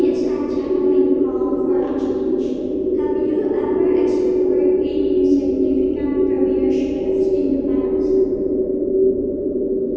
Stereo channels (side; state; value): both; identical; correlation 1.00